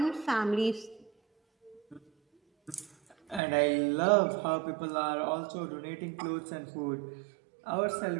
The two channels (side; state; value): left; drops out; at 3.4 s